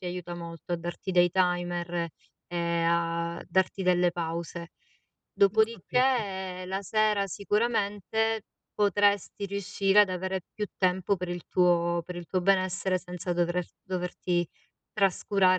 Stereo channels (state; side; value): identical; both; correlation 1.00